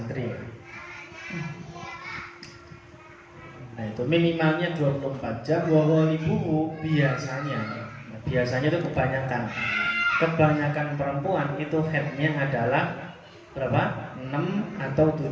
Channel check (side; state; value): both; identical; correlation 1.00